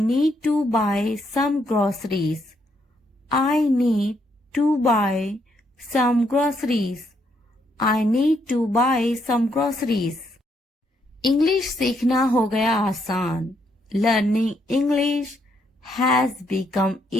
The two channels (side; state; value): both; normal; correlation 0.75